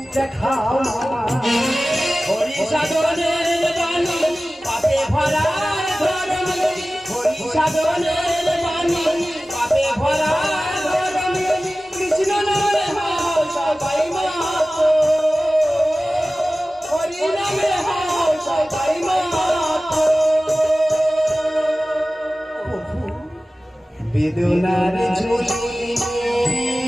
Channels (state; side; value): normal; both; correlation 0.96